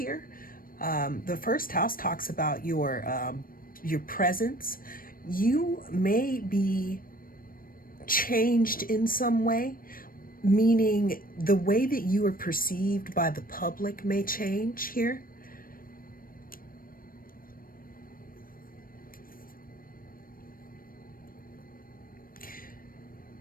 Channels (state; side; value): late; right; 0.41 ms